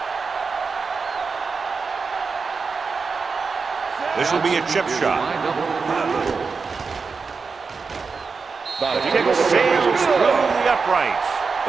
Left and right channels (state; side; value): quieter; left; 4.9 dB